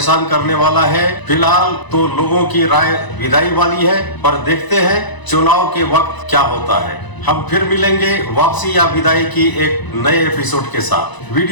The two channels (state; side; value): late; right; 1.0 ms